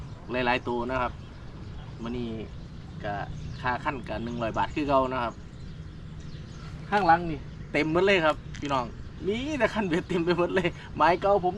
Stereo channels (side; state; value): both; identical; correlation 1.00